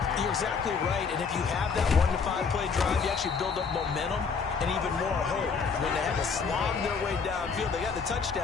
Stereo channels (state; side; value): quieter; right; 5.4 dB